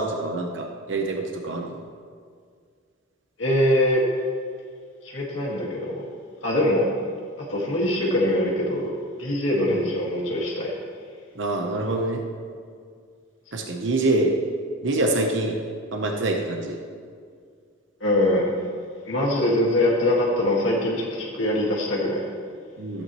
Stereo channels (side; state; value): both; normal; correlation 0.29